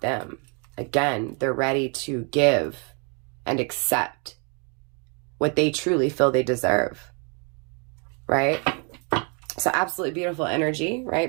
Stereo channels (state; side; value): quieter; left; 36.2 dB